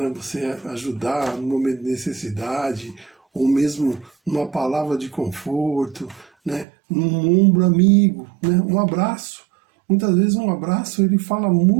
Você ajudar no momento de necessidade, ou mesmo numa palavra de conforto, né? Num ombro amigo, né? Um abraço. Muitas vezes um abraço ele fala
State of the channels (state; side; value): drops out; left; at 6.7 s